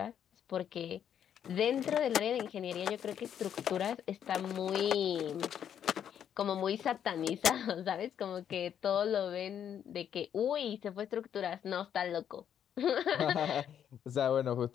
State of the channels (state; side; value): quieter; right; 9.1 dB